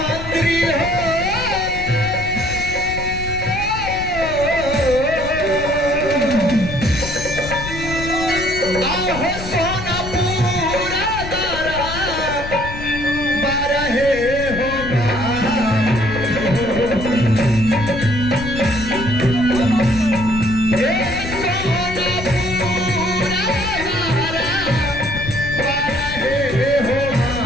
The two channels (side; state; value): left; noise; rumble, 9 dB below the sound